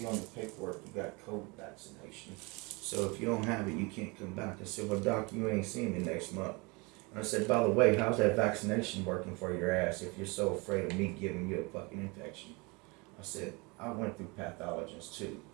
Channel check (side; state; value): left; quieter; 27.6 dB